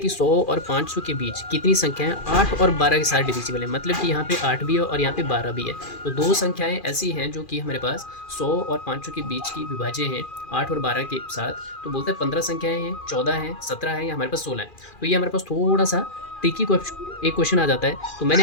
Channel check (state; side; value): late; right; 2.4 ms